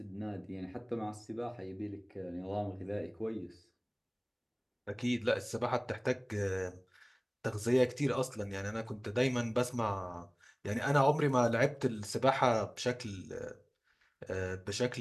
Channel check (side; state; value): both; identical; correlation 1.00